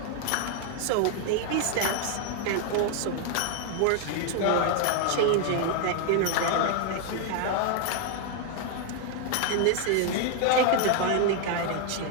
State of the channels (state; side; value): different; both; correlation 0.01